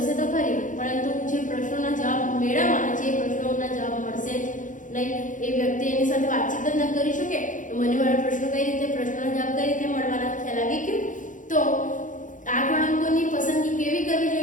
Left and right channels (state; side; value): late; right; 0.37 ms